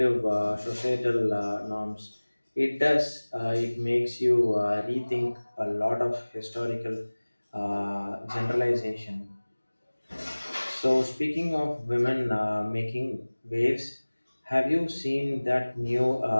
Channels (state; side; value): inverted; both; correlation -1.00